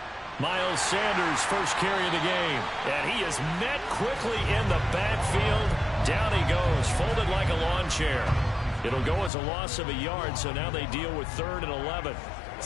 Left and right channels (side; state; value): right; drops out; at 9.3 s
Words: Miles Sanders, first carry of the game. And he is met quickly in the backfield. Down he goes, folded like a lawn chair. It'll go as a loss of a yard, so now they deal with 3rd and 11.